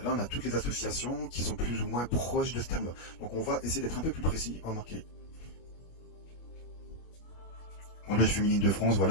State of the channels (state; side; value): late; right; 25 ms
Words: là on a toutes les associations qui sont plus ou moins proches de ce terme-là. Donc on va essayer d'être un peu plus précis, on va marquer en Loge féminine de France,